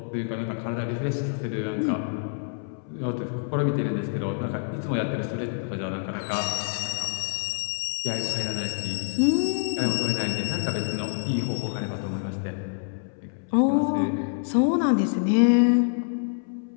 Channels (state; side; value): silent; right; 60 dB below the other